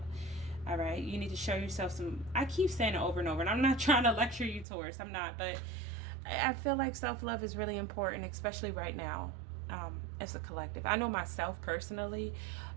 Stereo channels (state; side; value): drops out; left; at 4.7 s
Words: All right, you need to show yourself some, I keep saying it over and over, and I'm not trying to lecture you, Taurus, I'm not, but I feel like self-love is really important, especially right now, as a collective. I know myself personally,